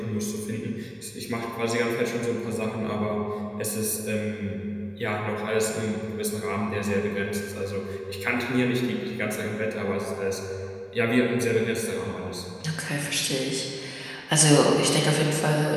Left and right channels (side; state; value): both; identical; correlation 1.00